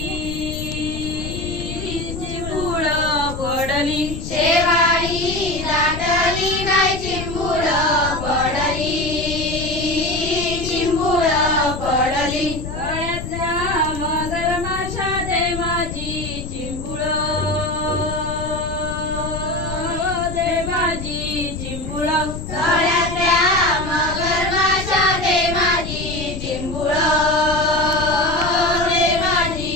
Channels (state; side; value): noise; left; rumble, 7 dB below the sound